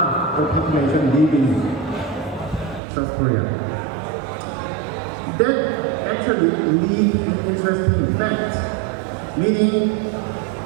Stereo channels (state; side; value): drops out; left; at 2.8 s